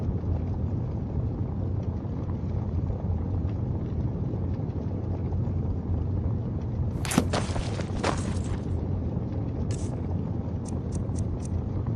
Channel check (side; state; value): both; identical; correlation 1.00